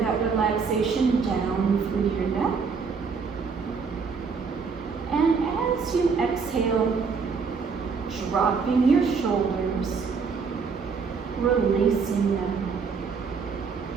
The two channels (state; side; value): quieter; left; 5.3 dB